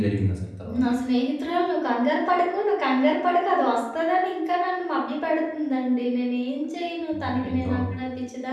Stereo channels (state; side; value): identical; both; correlation 1.00